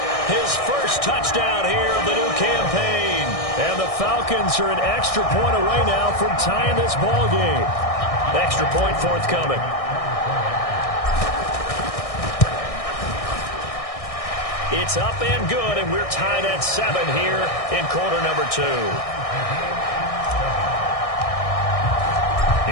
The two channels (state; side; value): late; right; 1.6 ms